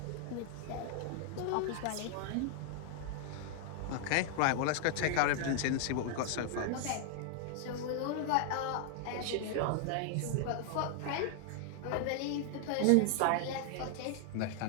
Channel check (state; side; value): different; both; correlation 0.00